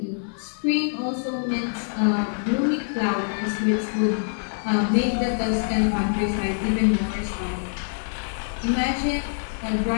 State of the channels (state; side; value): silent; right; digital silence